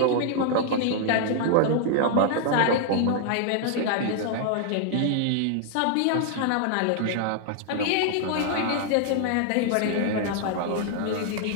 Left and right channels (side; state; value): both; different; correlation 0.00